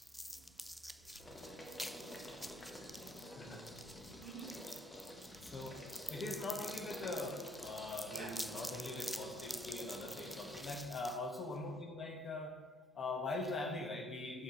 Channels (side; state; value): both; normal; correlation 0.64